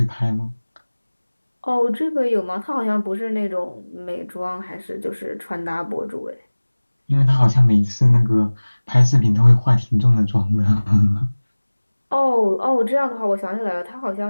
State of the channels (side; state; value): both; inverted; correlation -1.00